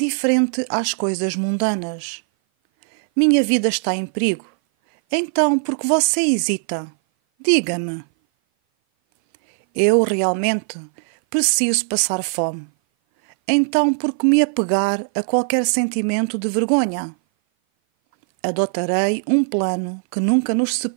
às coisas mundanas. Minha vida está em perigo. Então, por que você hesita? Diga-me. Eu realmente preciso passar fome. Então, por que me apegar a qualquer sentimento de vergonha? Adotarei um plano que nunca nos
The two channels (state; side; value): silent; left; 58 dB below the other